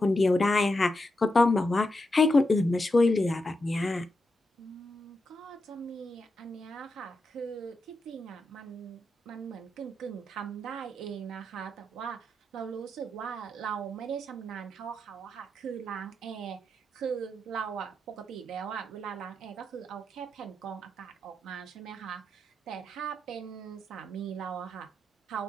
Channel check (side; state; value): both; normal; correlation 0.86